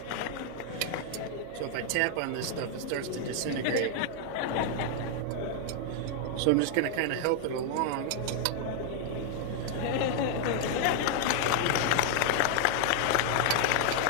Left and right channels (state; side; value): different; both; correlation 0.00